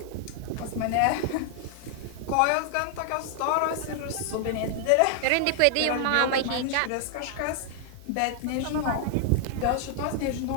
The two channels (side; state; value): both; different; correlation 0.00